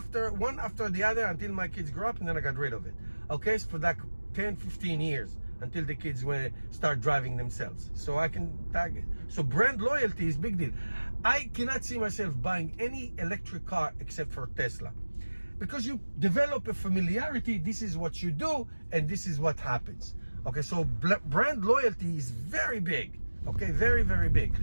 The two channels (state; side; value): inverted; both; correlation -1.00